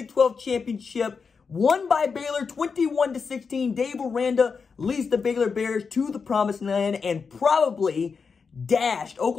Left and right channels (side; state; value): right; quieter; 5.4 dB